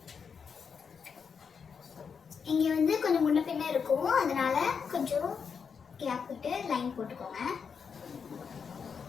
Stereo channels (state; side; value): quieter; right; 6.2 dB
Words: இங்கே வந்து கொஞ்சம் முன்ன பின்ன இருக்கும், அதனால கொஞ்சம் கேப் விட்டு லைன் போட்டுக்கோங்க.